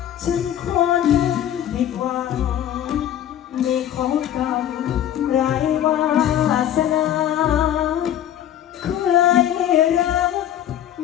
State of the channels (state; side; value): quieter; right; 10.9 dB